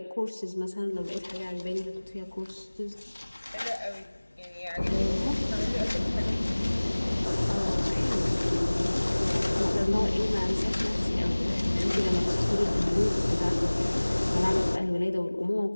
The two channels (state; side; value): inverted; both; correlation -1.00